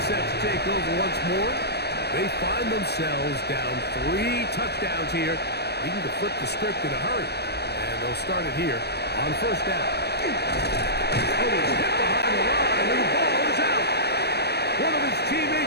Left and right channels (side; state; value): right; late; 0.48 ms